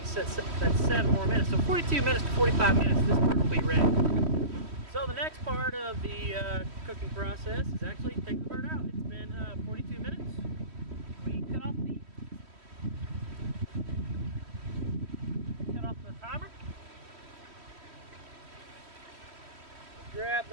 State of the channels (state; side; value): late; left; 3.1 ms